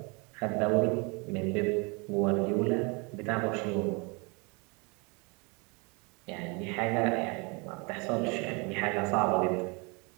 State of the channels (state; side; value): quieter; left; 30.7 dB